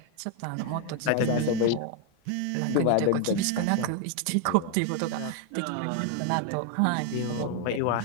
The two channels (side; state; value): both; different; correlation 0.01